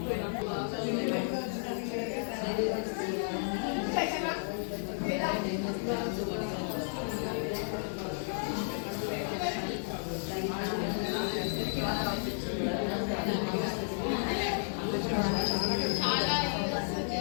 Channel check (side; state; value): right; silent; digital silence